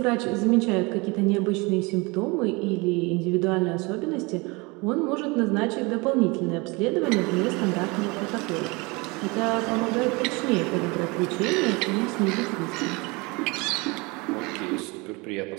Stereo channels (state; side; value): quieter; left; 26.5 dB